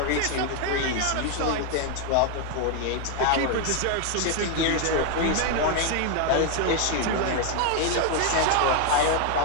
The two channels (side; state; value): both; different; correlation 0.01